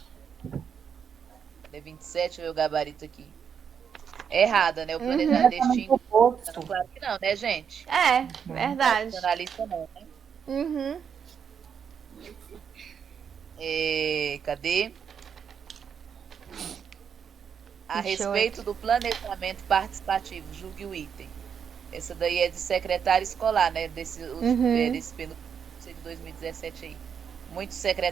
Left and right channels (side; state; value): left; quieter; 7.3 dB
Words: 27, o gabarito aqui. Errada, né? O planejamento distingue. Claro que não, né, gente? É, verdade. Tradicionalista não, né? Uhum. Cadê? A 28. respeito do planejamento participativo, julgue o item. Essa daí é de secretário escolar, né? Desse penúltimo de 2017 aí. Muitos